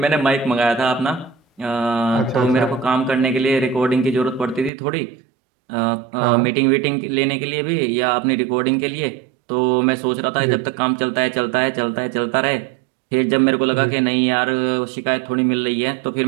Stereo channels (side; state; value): left; drops out; at 4.7 s